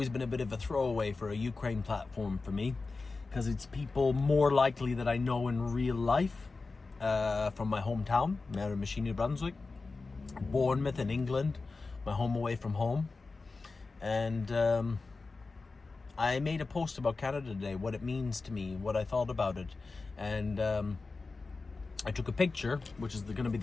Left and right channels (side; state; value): right; quieter; 3.9 dB